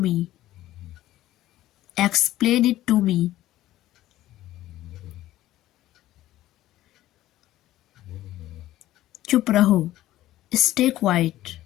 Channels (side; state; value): right; quieter; 14.8 dB